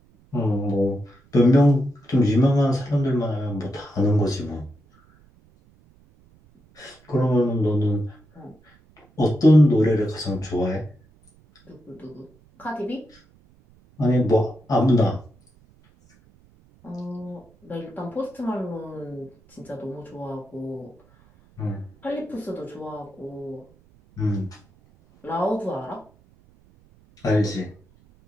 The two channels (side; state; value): right; noise; rumble, 30 dB below the sound